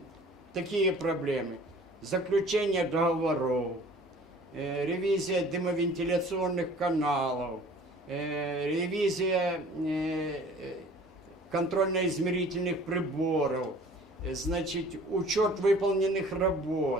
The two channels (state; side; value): normal; both; correlation 0.49